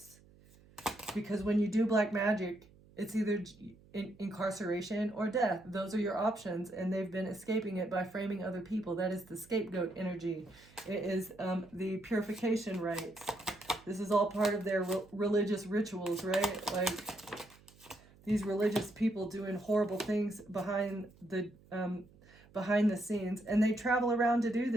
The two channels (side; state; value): right; noise; hum, 26 dB below the sound